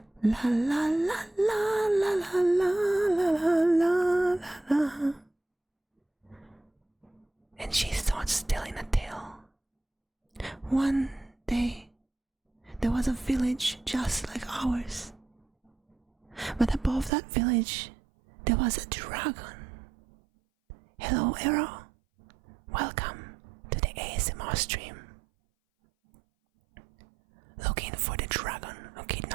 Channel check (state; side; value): drops out; left; at 17.1 s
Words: la la la la la la la la la la. And she starts telling a tale. One day, there was a village just like ours. But above that village, there was a dragon. Hello, Arrow. Welcome to the ASMR stream. Looking for the dragon who